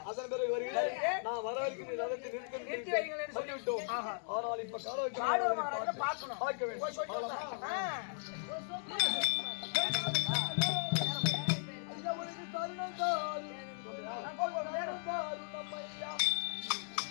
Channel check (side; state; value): right; silent; 53 dB below the other